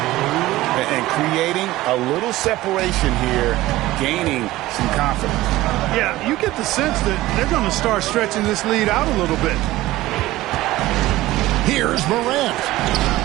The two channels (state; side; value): quieter; left; 17.1 dB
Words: creating a little separation here, gaining some confidence. Yeah, you get the sense that they're going to start stretching this lead out a little bit. Here's Morant.